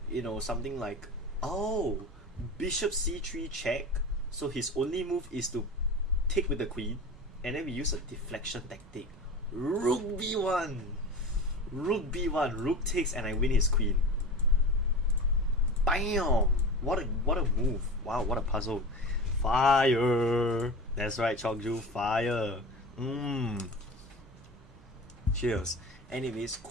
something like, oh, bishop c3 check. So his only move is to take with the queen, and then we use a deflection tactic. Rook b1, rook b1, rook takes, and I win his queen. Bam! What a move! Wow, what a puzzle! Fire! That's right, Chokju, fire! Cheers. Anyways,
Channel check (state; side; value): normal; both; correlation 0.32